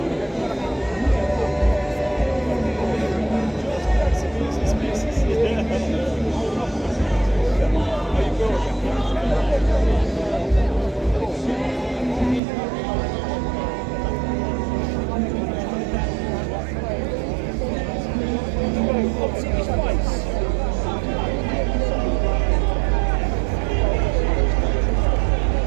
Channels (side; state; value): left; drops out; at 12.4 s